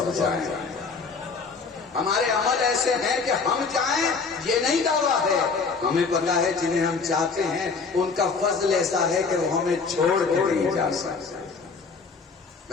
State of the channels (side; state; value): right; quieter; 4.8 dB